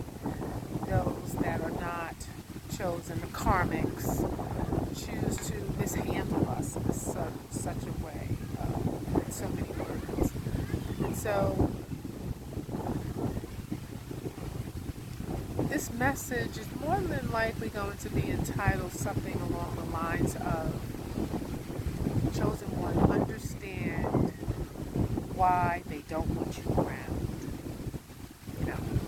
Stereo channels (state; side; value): identical; both; correlation 1.00